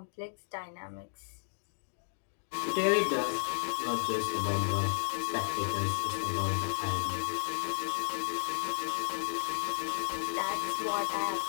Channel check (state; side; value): silent; right; digital silence